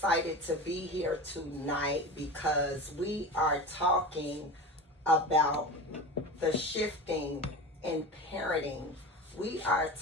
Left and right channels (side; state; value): both; normal; correlation 0.29